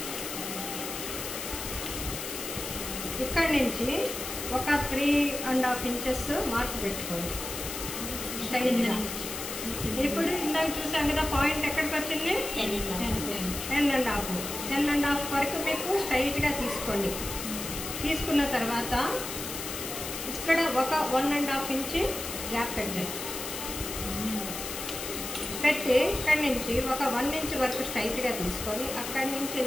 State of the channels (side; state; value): left; noise; hiss, 6 dB below the sound